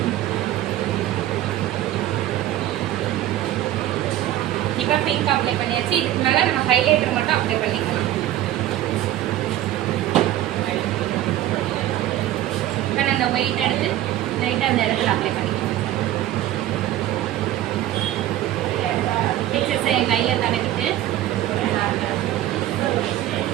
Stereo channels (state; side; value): quieter; left; 13.6 dB